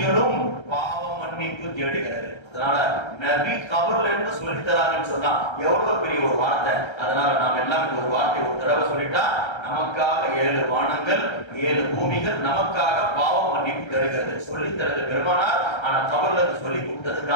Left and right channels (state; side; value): late; right; 1.3 ms